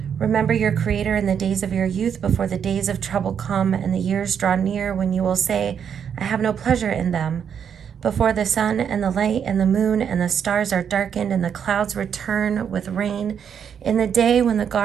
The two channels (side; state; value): left; quieter; 7.8 dB